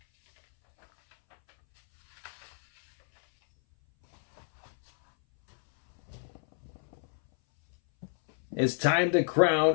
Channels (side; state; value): right; silent; 59 dB below the other